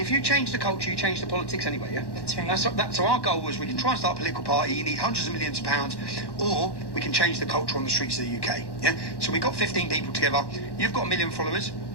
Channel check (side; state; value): right; late; 1.1 ms